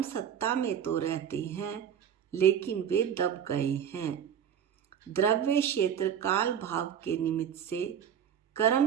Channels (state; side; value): quieter; left; 8.7 dB